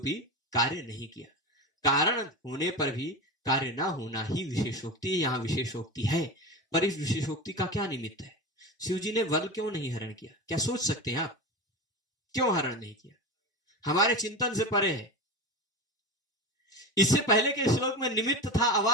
कार्य नहीं किया। कारण होने पर भी कार्य ना होना ही विशेषोक्ति, यहां विशेषोक्ति है। पर इस विशेषोक्ति का क्या निमित्त है, शिव जी ने बल क्यों नहीं हरण किया, क्या सोच सकते हैं आप, क्यों हरण नहीं किया, हमारे चिंतन से परे है। इससे पहले के श्लोक में निमित्त था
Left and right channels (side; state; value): both; normal; correlation 0.24